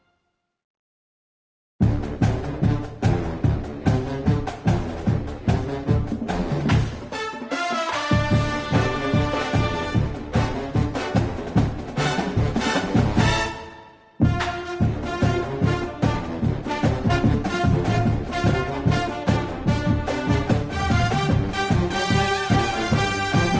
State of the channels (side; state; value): both; identical; correlation 1.00